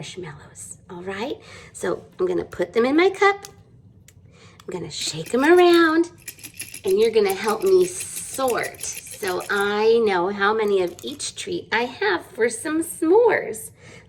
all right? So I'm gonna put them in my cup. I'm gonna shake them around, and you're gonna help me sort so I know how many of each treat I have for some s'mores,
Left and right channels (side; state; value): both; identical; correlation 1.00